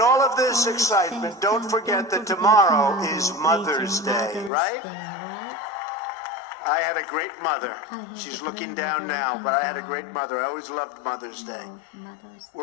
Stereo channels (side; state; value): right; drops out; at 4.5 s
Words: all of this excitement, don't forget that tomorrow is Mother's Day, right? I had a great mother. She's looking down now, but I had a great mother. I always loved Mother's Day.